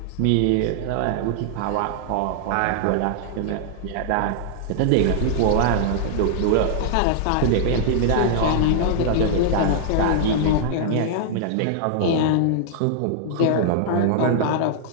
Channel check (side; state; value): both; different; correlation -0.01